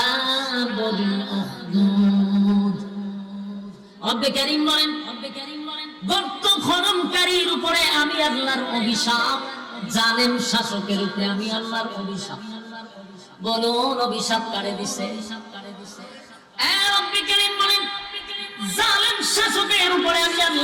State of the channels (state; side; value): identical; both; correlation 1.00